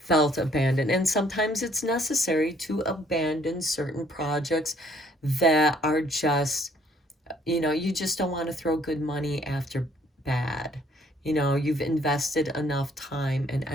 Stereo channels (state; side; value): normal; both; correlation 0.63